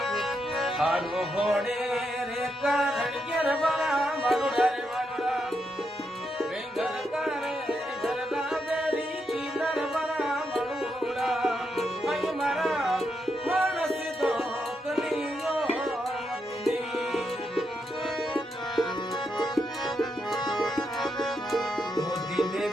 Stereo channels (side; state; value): both; normal; correlation 0.82